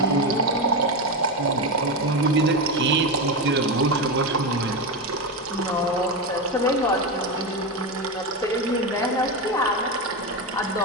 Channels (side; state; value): both; normal; correlation 0.14